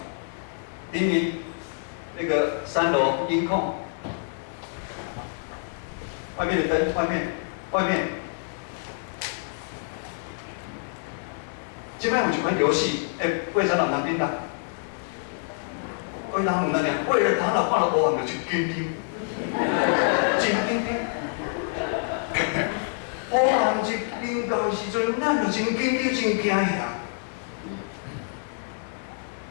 明明那个3楼音控。外面的灯，外面。即摆有一款游戏，为啥人叮当？为人唔那样？为了他若看到黑暗就紧张，真紧张。黑暗一临到时阵，咱就真紧张，真惊吓。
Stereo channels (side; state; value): right; silent; digital silence